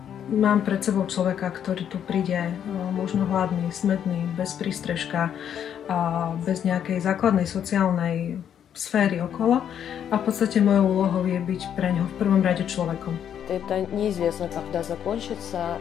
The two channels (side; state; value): right; quieter; 9.2 dB